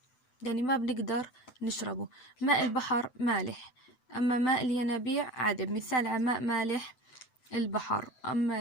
يعني ما بنقدر نشربه. ماء البحر مالح، أما ماء الينابيع عذب. مثال على ماء مالح البحر،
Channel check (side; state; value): right; late; 7.9 ms